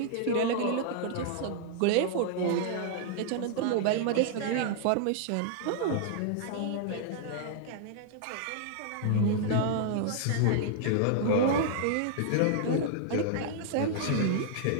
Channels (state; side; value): different; both; correlation -0.01